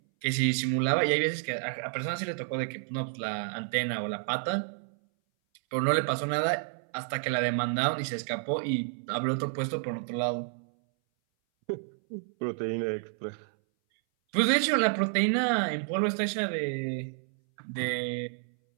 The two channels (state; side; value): silent; left; 58 dB below the other